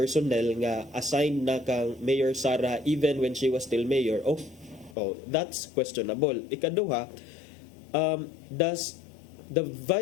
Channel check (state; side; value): drops out; right; at 5.0 s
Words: nga assigned na kang Mayor Sara even when she was still mayor, that's questionable. Ikaduha, does the